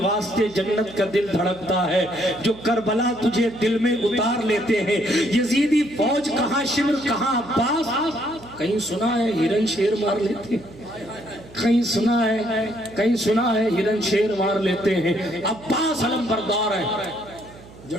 جنت کا دل دھڑکتا ہے، جو کربلا تجھے دل میں اتار لیتے ہیں۔ یزیدی فوج کہاں شمر کہاں عباس، کہیں سنا ہے ہرن شیر مار لیتے ہیں، کہیں سنا ہے ہرن شیر مار لیتے ہیں۔ عباس علم بردار ہے،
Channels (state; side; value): noise; right; hum, 20 dB below the sound